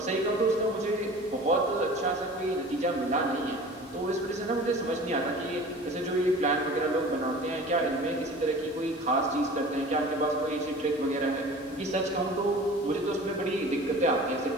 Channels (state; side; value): normal; both; correlation 0.41